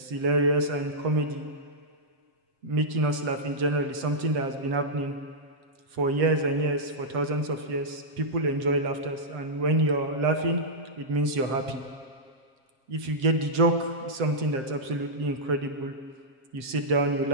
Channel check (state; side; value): late; left; 7.6 ms